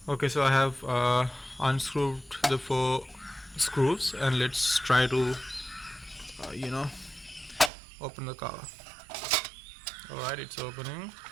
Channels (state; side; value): drops out; left; at 7.7 s